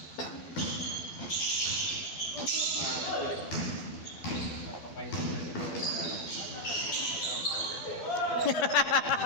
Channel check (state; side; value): late; right; 12 ms